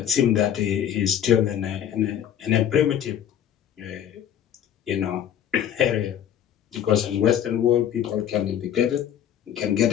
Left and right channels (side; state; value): right; quieter; 10.0 dB